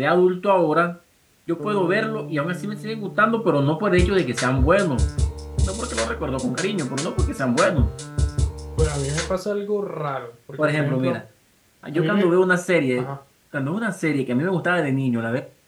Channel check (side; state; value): both; identical; correlation 1.00